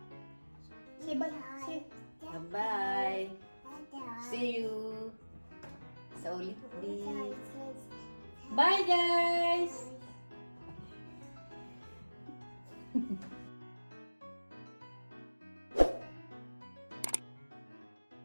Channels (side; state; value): both; inverted; correlation -1.00